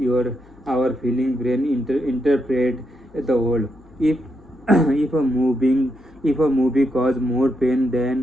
our feeling brain interpret the world. If if a movie causes more pain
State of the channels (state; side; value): noise; left; hum, 26 dB below the sound